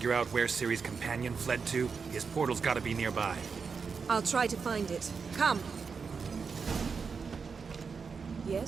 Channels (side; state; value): left; quieter; 5.5 dB